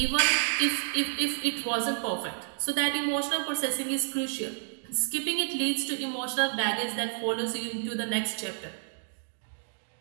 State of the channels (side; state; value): left; silent; digital silence